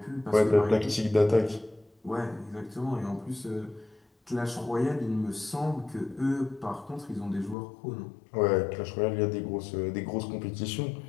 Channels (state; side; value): drops out; right; at 7.6 s